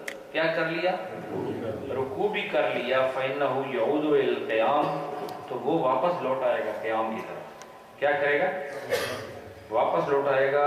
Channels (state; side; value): identical; both; correlation 1.00